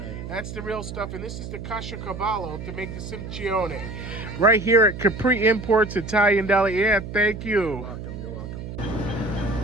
That's the real stuff. And this is the caciocavallo to make the simcione. Right here at Capri Imports Italian Deli. Yeah, thank you. You're welcome.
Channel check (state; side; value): noise; right; hum, 9 dB below the sound